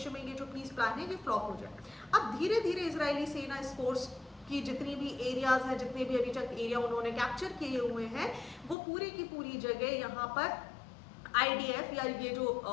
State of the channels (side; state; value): right; drops out; at 8.8 s